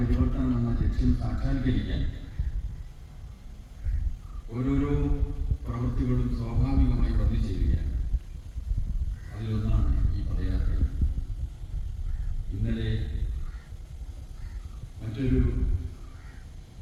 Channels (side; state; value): both; identical; correlation 1.00